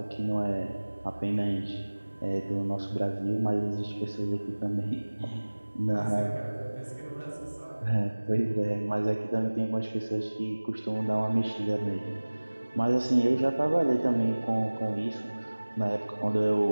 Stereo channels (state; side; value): inverted; both; correlation -1.00